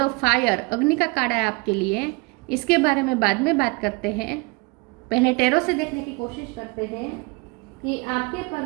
ऑफ फायर, अग्नि का कार्ड है आपके लिए। इसके बारे में बाद में बात करते हैं। पहले टैरो से देखने की कोशिश करते हैं कि आपके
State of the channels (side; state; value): left; quieter; 26.7 dB